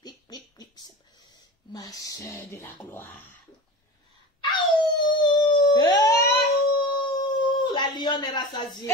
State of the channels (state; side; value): normal; both; correlation 0.31